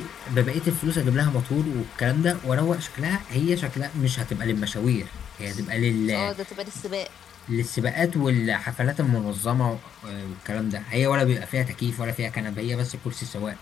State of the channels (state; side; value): quieter; right; 8.8 dB